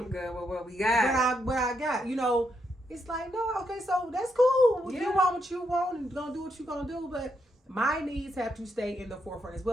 good with what we got. What I got. It's like, no, okay, so that's cool. You want what you want and gonna do what you're gonna do, but my needs have to stay in the forefront as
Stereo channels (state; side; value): normal; both; correlation 0.80